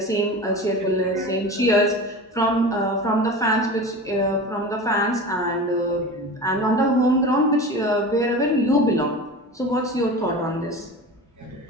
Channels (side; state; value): both; normal; correlation 0.32